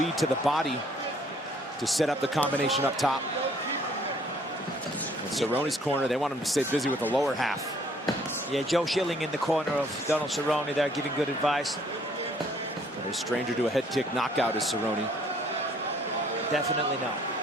to the body to set up the combination up top. In Cerrone's corner, they want him to stay busy with the lower half. Yeah, Joe Schilling in the corner of Donald Cerrone there, giving good advice. A stranger to a head kick knockout is Cerrone. Definitely not.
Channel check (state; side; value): normal; both; correlation 0.61